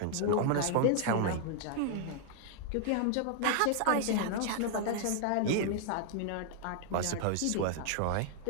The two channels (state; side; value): different; both; correlation 0.00